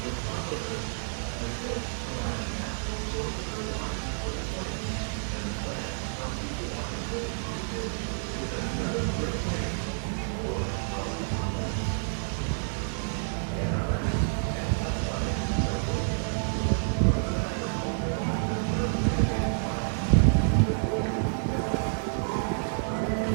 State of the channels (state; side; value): silent; left; 55 dB below the other